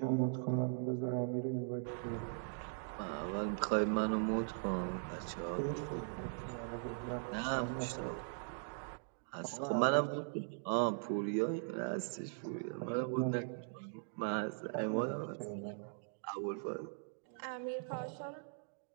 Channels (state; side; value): silent; left; digital silence